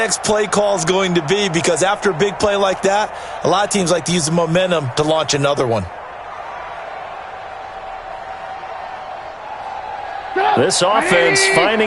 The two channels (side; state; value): both; identical; correlation 1.00